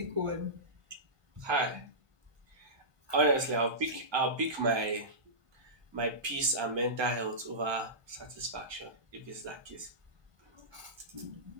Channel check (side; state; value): left; late; 1.2 ms